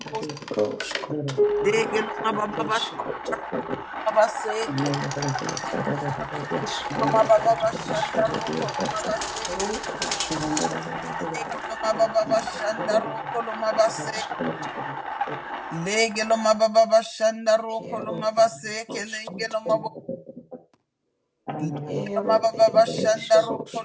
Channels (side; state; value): both; identical; correlation 1.00